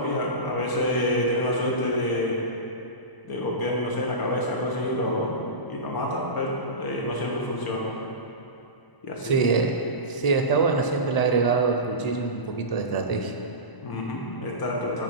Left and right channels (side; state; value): right; late; 1.0 ms